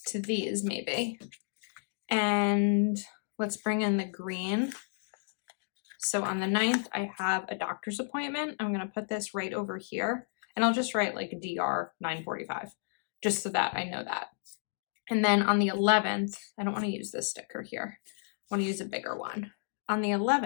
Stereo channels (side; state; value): right; silent; digital silence